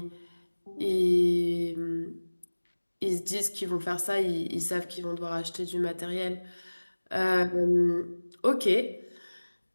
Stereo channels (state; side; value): inverted; both; correlation -1.00